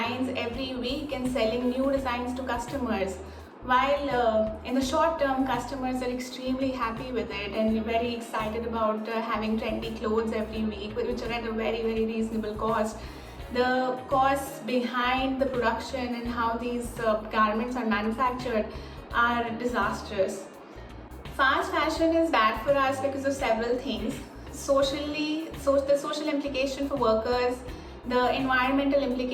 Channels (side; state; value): both; identical; correlation 1.00